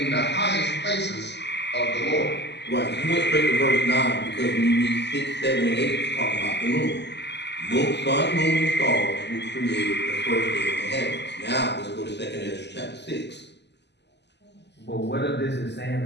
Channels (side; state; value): right; late; 0.50 ms